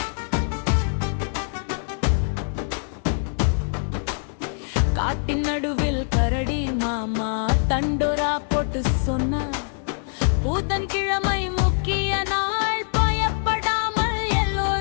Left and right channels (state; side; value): silent; right; digital silence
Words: காட்டின் நடுவில் கரடி மாமா தண்டோரா போட்டு சொன்னார். புதன்கிழமை முக்கிய நாள், பயப்படாமல்